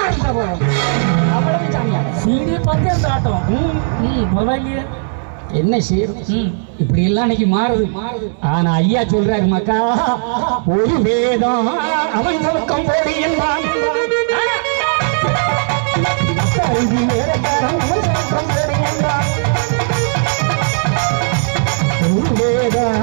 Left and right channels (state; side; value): silent; left; digital silence